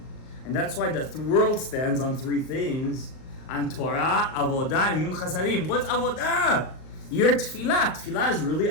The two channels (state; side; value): late; right; 38 ms